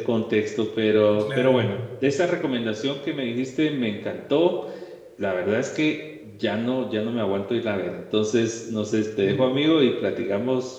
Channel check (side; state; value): both; identical; correlation 1.00